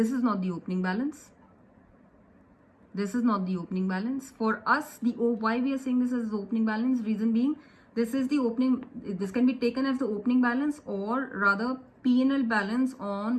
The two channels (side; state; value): both; identical; correlation 1.00